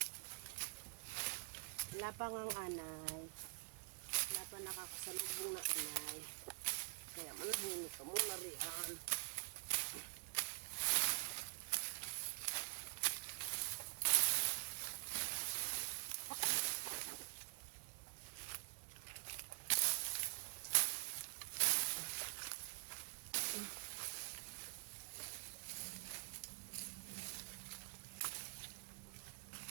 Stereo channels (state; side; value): silent; left; digital silence